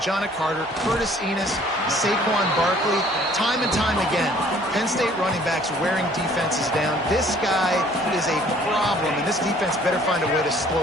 Carter, Curtis Enos, Saquon Barkley, time and time again, Penn State running backs wearing defenses down. This guy is a problem, and this defense better find a way to slow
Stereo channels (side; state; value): both; normal; correlation 0.57